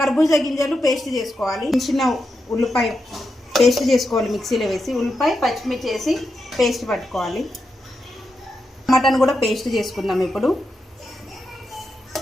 కర్బూజా గింజలు పేస్ట్ చేసుకోవాలి. చిన్న ఉల్లిపాయ పేస్ట్ చేసుకోవాలి, మిక్సీలో వేసి. ఉల్లిపాయ పచ్చిమిర్చి వేసి పేస్ట్ పట్టుకోవాలి. టమాటాను కూడా పేస్ట్ చేసుకుందాం. ఇప్పుడు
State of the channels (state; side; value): normal; both; correlation 0.86